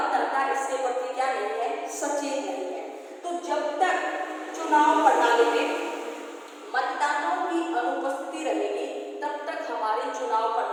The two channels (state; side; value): identical; both; correlation 1.00